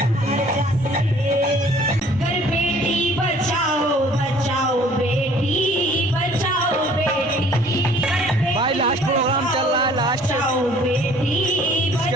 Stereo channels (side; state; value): both; normal; correlation 0.55